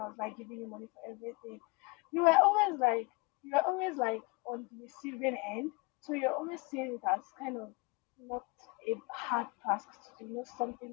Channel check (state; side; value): quieter; right; 25.7 dB